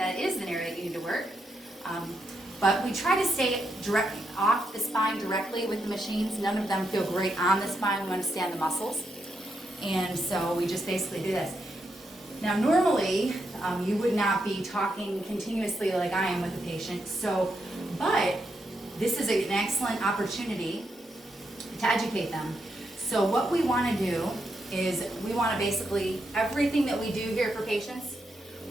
is an area that you need to work. But we try to stay directly off the spine directly with the machines. None of them feel great on the spine. We want to stay on the muscles. And so we just basically do this. Now normally, you would not be talking continuously like I am with a patient. But this is an excellent opportunity to educate them. So what we want to do is we want to basically, everything that we do here for patients,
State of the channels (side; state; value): both; normal; correlation 0.82